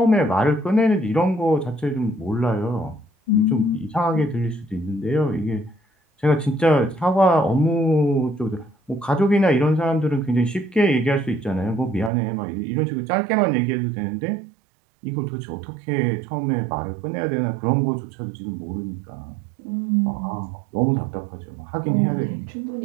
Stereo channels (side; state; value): left; drops out; at 12.1 s